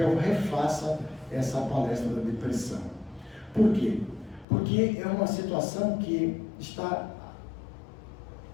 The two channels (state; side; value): drops out; right; at 4.5 s